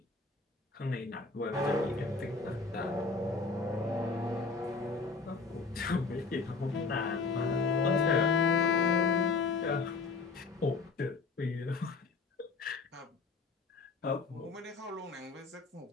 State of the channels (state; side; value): quieter; right; 4.4 dB